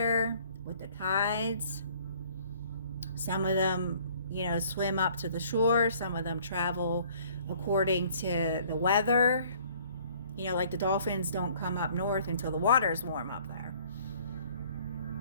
with the tides. Some of them, you know, swim up to the shore. Some of them travel according to the weather. You know, like the dolphins don't come up north until the water's warm up there.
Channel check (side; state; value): both; inverted; correlation -0.56